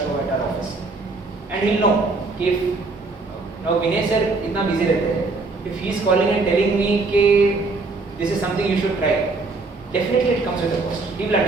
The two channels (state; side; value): quieter; left; 3.7 dB